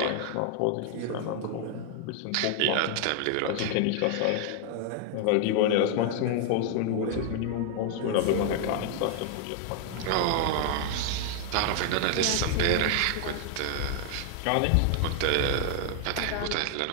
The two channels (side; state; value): both; different; correlation 0.00